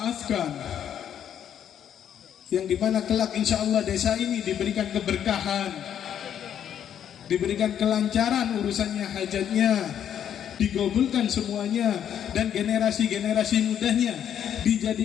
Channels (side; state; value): right; quieter; 9.4 dB